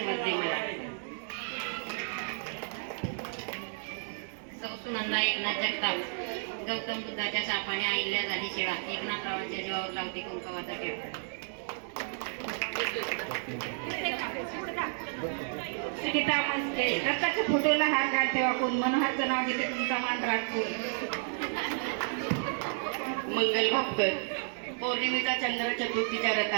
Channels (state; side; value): silent; left; 57 dB below the other